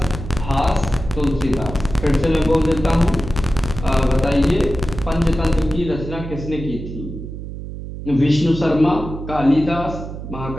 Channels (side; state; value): right; noise; hum, 9 dB below the sound